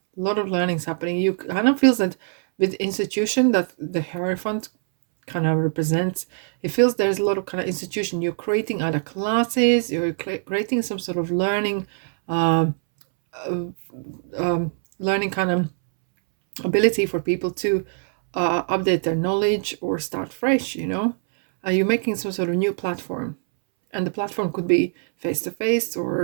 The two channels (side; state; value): left; silent; 63 dB below the other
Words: You kind of feels that with institution that the Hierophant kind of represents, it feels there's a lot of kind of institution. You're creating other classes, you're creating some sort of learning learning kind of ability for people to update their knowledge or start fresh, you know. You're making some sort of new platform, and the platform could be face-to-face